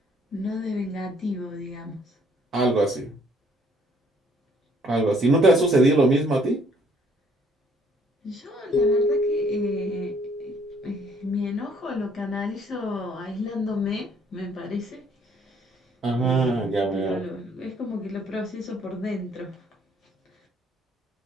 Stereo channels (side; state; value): both; normal; correlation 0.63